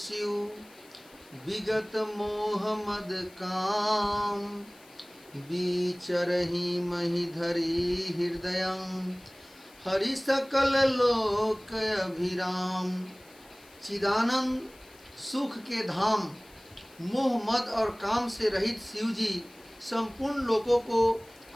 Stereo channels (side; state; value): left; noise; hiss, 25 dB below the sound